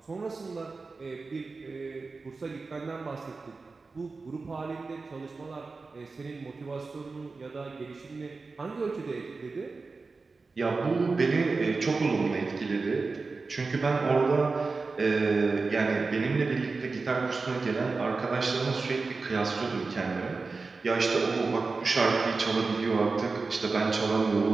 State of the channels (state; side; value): quieter; left; 4.1 dB